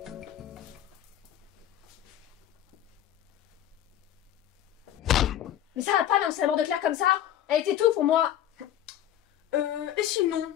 Mais ça va pas d'annoncer la mort de Claire comme ça. Elle était tout pour moi. Et sinon,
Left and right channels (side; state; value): right; quieter; 11.4 dB